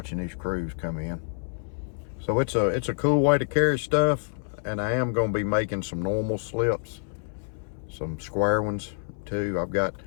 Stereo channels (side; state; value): right; silent; 59 dB below the other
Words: these crews come in. So it's a cool way to carry stuff, and I am going to be making some normal slips, some square ones too.